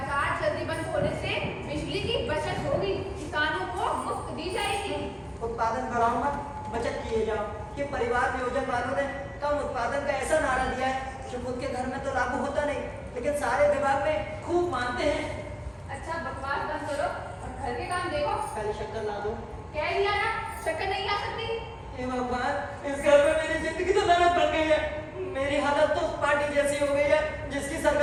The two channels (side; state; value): both; identical; correlation 1.00